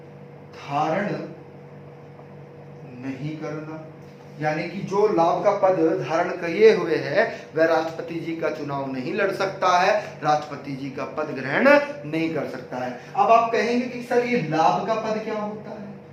धारण नहीं करना, यानी कि जो लाभ का पद धारण किए हुए है वह राष्ट्रपति जी का चुनाव नहीं लड़ सकता है, राष्ट्रपति जी का पद ग्रहण नहीं कर सकता है। अब आप कहेंगे कि सर ये लाभ का पद क्या होता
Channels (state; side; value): identical; both; correlation 1.00